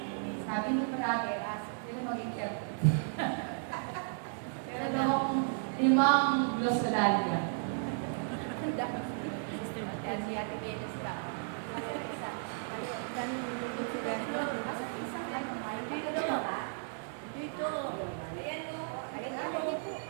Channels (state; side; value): silent; left; 55 dB below the other